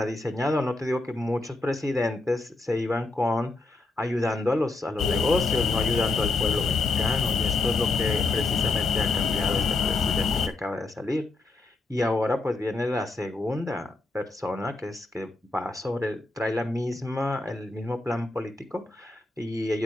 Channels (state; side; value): quieter; right; 3.3 dB